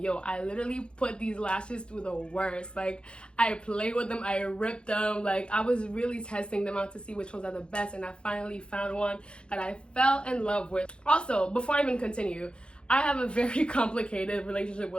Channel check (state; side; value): late; right; 0.055 ms